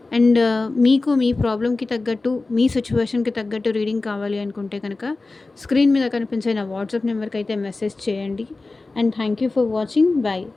అండ్ మీకు మీ ప్రాబ్లమ్‌కి తగ్గట్టు, మీ సిట్యుయేషన్‌కి తగ్గట్టు రీడింగ్ కావాలి అనుకుంటే గనక స్క్రీన్ మీద కనిపించే నా వాట్సాప్ నెంబర్‌కైతే మెసేజ్ చేయండి. And thank you for watching. By.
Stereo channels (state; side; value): quieter; right; 3.4 dB